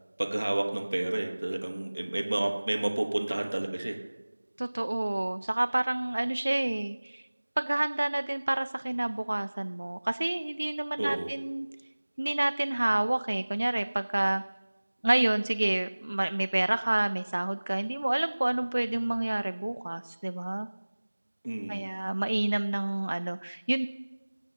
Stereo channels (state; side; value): inverted; both; correlation -1.00